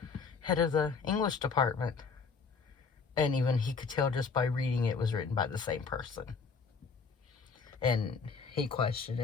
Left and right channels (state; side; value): quieter; right; 5.2 dB